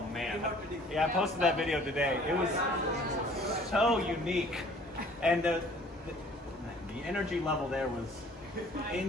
man. Yeah, I posted that video today. It was so unique. And the energy level there was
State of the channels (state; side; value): normal; both; correlation 0.54